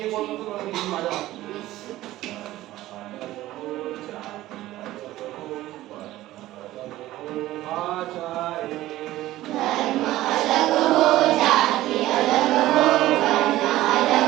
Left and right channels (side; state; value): left; quieter; 15.7 dB